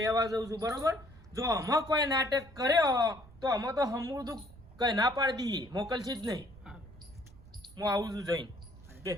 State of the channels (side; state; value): right; noise; rumble, 21 dB below the sound